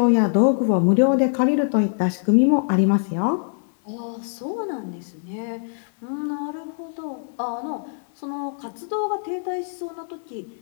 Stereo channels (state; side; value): silent; right; digital silence